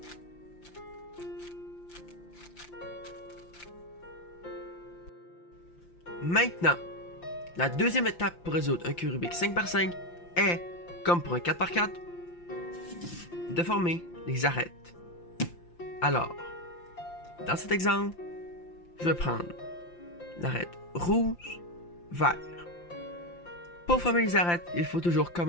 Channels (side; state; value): right; late; 5.8 ms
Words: Maintenant, la deuxième étape pour résoudre un cube Rubik 5 par 5 est, comme pour un 4 par 4, de former les arêtes. Alors, dans cet exemple, je vais prendre l'arête rouge, vert. Pour former les arêtes, il faut toujours